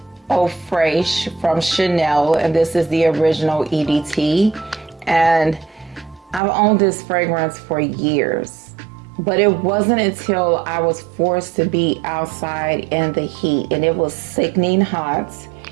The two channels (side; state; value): left; drops out; at 6.4 s